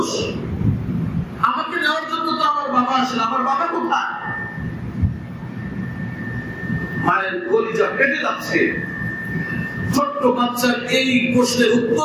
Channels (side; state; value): both; identical; correlation 1.00